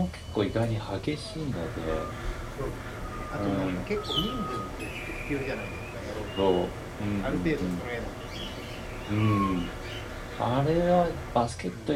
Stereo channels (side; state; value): both; identical; correlation 1.00